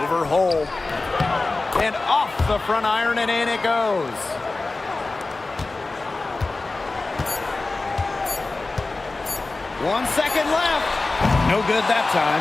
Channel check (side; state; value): right; quieter; 3.4 dB